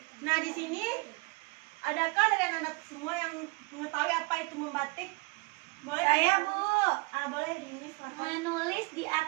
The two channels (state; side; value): quieter; left; 27.2 dB